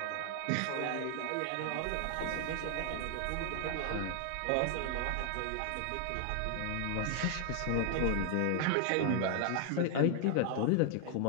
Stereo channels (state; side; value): different; both; correlation 0.00